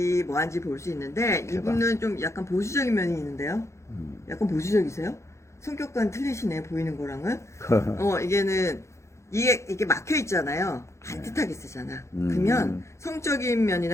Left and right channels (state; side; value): late; right; 0.14 ms